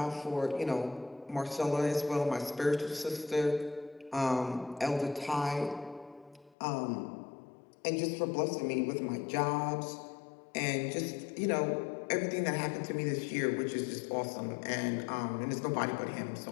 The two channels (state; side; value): drops out; right; at 6.6 s